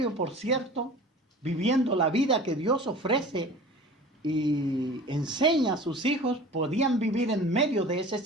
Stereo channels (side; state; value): both; normal; correlation 0.40